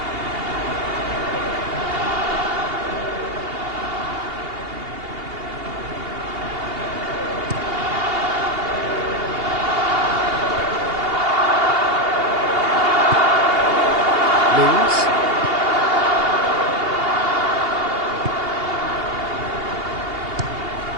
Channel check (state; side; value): late; left; 2.8 ms